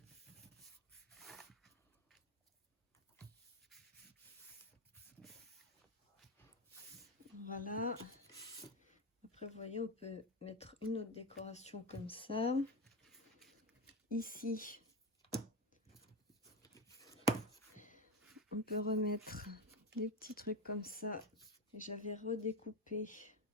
Voilà. Après, vous voyez, on peut mettre une autre décoration comme ça. Ici, on peut remettre des petits trucs comme ça. Et j'avais redécoupé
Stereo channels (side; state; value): both; normal; correlation 0.15